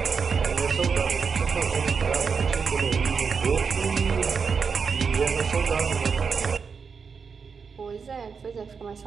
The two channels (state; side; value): quieter; left; 5.7 dB